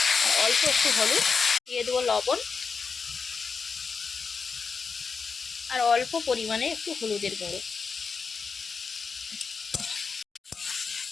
আর অল্প একটু হলুদ, দিয়ে দেবো লবণ আর অল্প পরিমাণে একটু হলুদের গুঁড়ো।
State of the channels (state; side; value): quieter; right; 5.2 dB